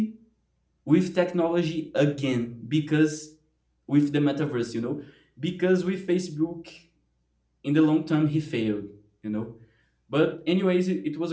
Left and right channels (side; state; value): both; identical; correlation 1.00